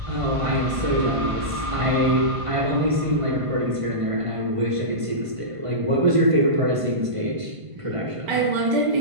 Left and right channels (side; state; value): left; late; 1.5 ms